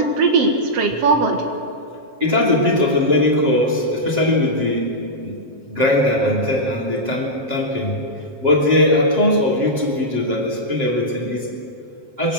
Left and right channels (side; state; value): left; late; 7.5 ms